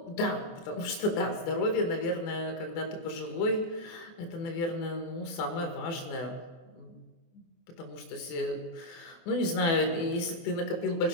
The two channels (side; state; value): right; late; 24 ms